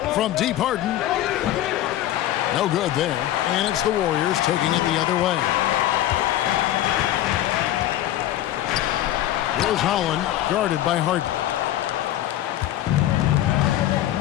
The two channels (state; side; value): quieter; right; 13.3 dB